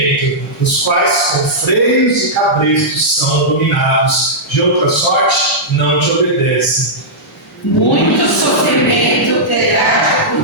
os quais com freios e cabrestos são dominados, de outra sorte não te obedecem. Muito sofrimento terá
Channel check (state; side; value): normal; both; correlation -0.11